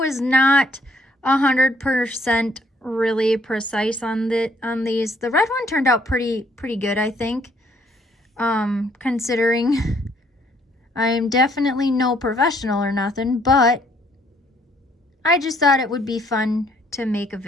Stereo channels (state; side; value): normal; both; correlation 0.66